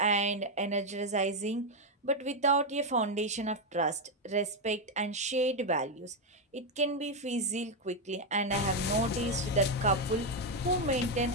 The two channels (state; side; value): normal; both; correlation 0.04